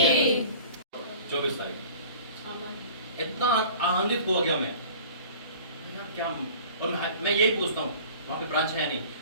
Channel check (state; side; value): inverted; both; correlation -0.45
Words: 24 तारीख इतना आनंदित हो गया मैं क्या। और मैं यही पूछता हूँ वहाँ पे ब्रांच है या नहीं,